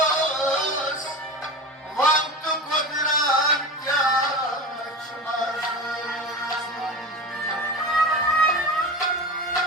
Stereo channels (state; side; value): normal; both; correlation 0.28